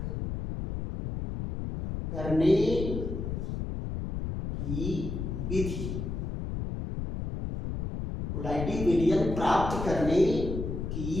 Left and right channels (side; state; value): left; noise; rumble, 4 dB below the sound